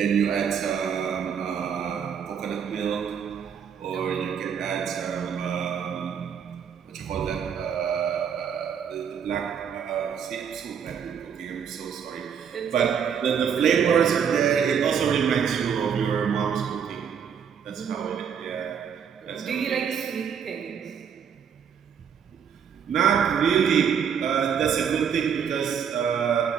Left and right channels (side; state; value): left; quieter; 7.6 dB